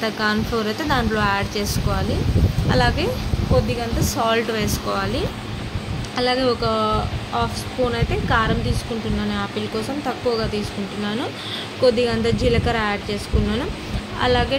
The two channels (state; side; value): identical; both; correlation 1.00